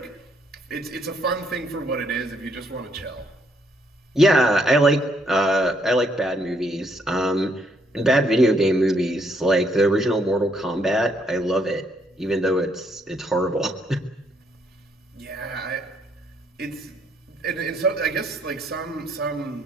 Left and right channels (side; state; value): both; normal; correlation 0.71